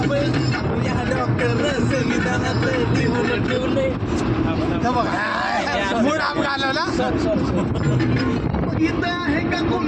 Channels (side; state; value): both; identical; correlation 1.00